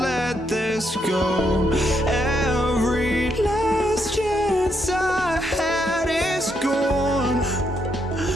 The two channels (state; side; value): normal; both; correlation 0.77